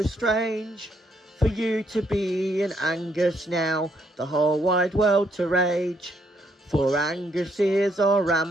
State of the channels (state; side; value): normal; both; correlation 0.73